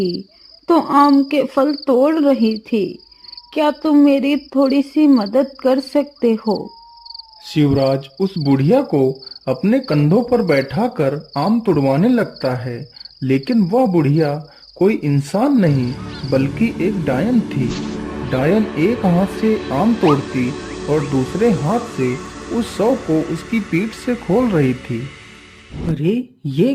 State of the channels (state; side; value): identical; both; correlation 1.00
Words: तो आम के फल तोड़ रही थी। क्या तुम मेरी थोड़ी सी मदद कर सकते हो। शिवराज उस बुढ़िया को अपने कंधों पर बैठाकर आम तुड़वाने लगता है, लेकिन वह बुढ़िया कोई इंसान नहीं बल्कि एक डायन थी। डायन एक हाथ से आम तोड़ती और दूसरे हाथ से उस 100 को उसकी पीठ से खोल रही थी। अरे ये